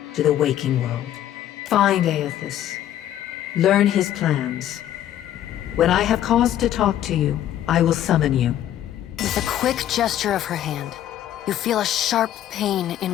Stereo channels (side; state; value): right; quieter; 11.7 dB